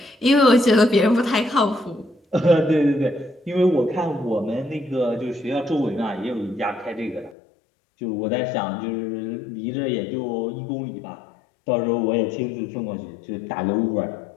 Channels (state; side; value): drops out; right; at 7.4 s